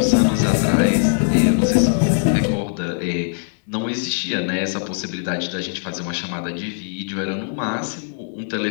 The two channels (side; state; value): right; silent; 65 dB below the other